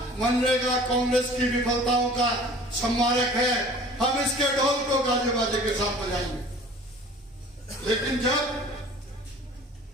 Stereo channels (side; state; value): both; normal; correlation 0.47